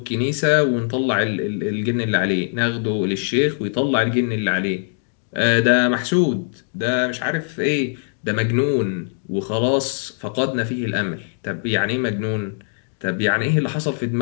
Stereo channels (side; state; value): right; silent; 65 dB below the other